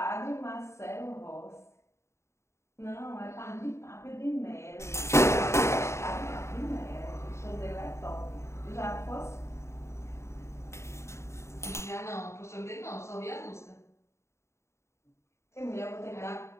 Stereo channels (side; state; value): right; late; 0.13 ms